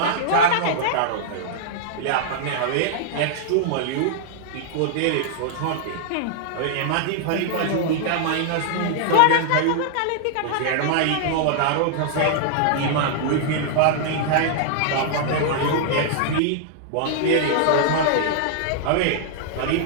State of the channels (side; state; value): both; different; correlation -0.01